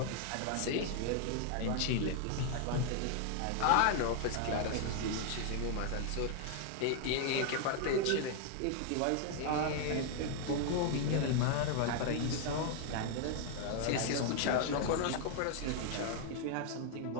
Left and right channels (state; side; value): different; both; correlation 0.00